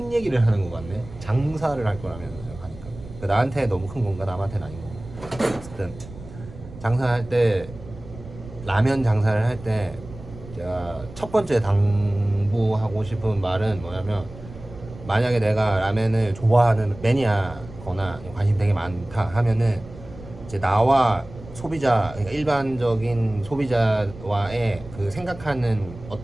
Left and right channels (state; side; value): noise; right; rumble, 16 dB below the sound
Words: 얘기를 하는 것 같네. 장사를 할 거라면 하니까 나한테 너무 큰 건가 남한테는 아닌 건가. 어쨌든 장사할 때 라면 장사를 할 때 제가 첫 번째 당부하고 싶은 말은 뭐냐면 만약에 내가 라면을 좋아하는 매니아거나 관심 되게 많다 하면은 이제 나와 소비자 그러니까 일반적인 소비자와의 그 생각하는